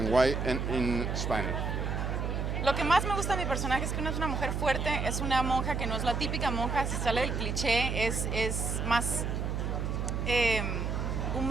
why in Spanish? Lo que más me gusta de mi personaje es que no es una mujer fuerte, es una monja que no es la típica monja, se sale del cliché, es más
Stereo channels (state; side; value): noise; right; hum, 1 dB below the sound